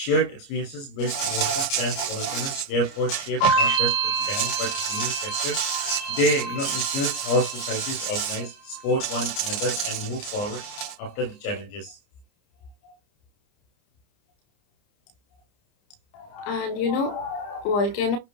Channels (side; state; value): right; late; 29 ms